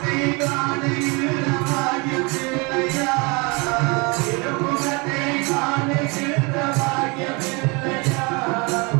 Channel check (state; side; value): quieter; left; 28.8 dB